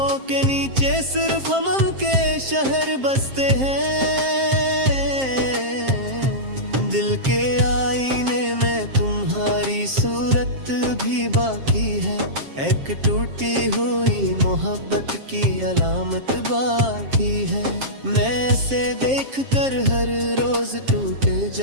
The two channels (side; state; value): left; late; 7.5 ms